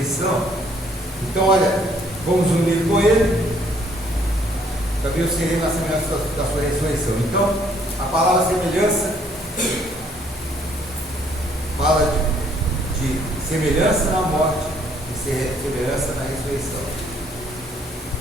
Então, olha, fomos unidos com Ele, também o seremos na semelhança da sua ressurreição. Então, a palavra semelhança fala de semelhança na morte e semelhança na ressurreição.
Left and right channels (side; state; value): both; normal; correlation 0.65